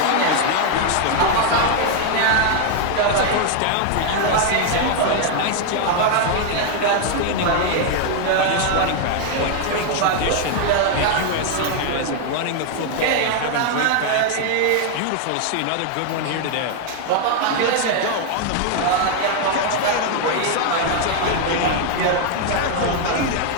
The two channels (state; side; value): different; both; correlation 0.01